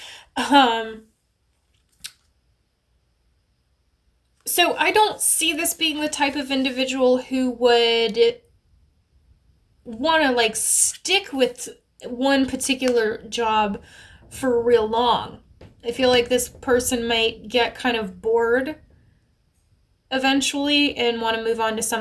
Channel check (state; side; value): identical; both; correlation 1.00